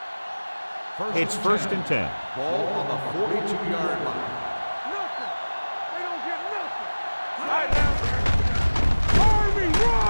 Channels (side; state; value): both; inverted; correlation -1.00